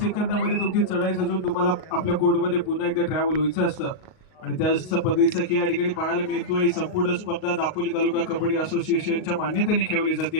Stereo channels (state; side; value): late; right; 38 ms